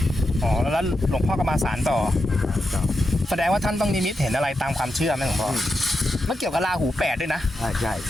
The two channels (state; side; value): normal; both; correlation 0.87